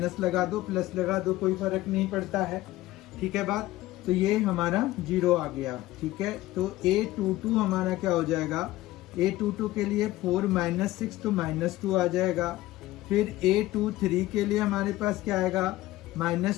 लगा दो, प्लस लगा दो, कोई फर्क नहीं पड़ता है। ठीक है बात, तो ये हमारा 0 आ गया। ठीक है, तो A22 हमारा क्या हो जाएगा, A22 के लिए 4 -6 तो -2 आ जाएगा। फिर A23 के लिए हमारे पास क्या आएगा,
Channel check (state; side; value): quieter; right; 16.8 dB